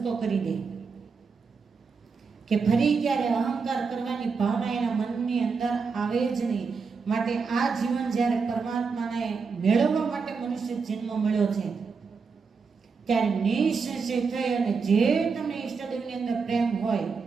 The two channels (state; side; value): quieter; left; 5.1 dB